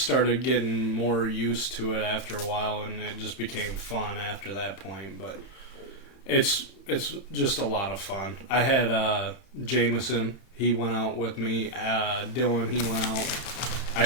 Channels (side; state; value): right; late; 31 ms